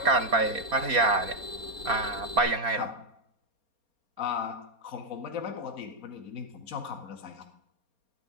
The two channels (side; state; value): left; late; 4.3 ms